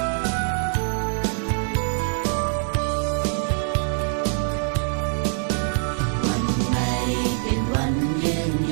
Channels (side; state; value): left; silent; 63 dB below the other